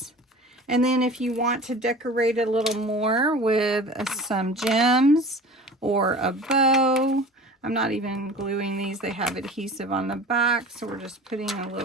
And then if you want to decorate it a little more with some gems or a bow, I'm not even gluing these. They have adhesive on the back, so we're just putting a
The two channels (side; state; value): both; normal; correlation 0.40